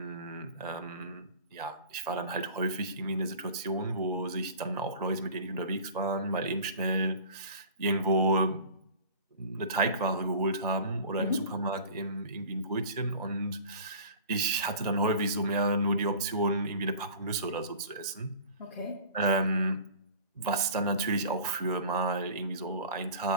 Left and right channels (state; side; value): inverted; both; correlation -0.41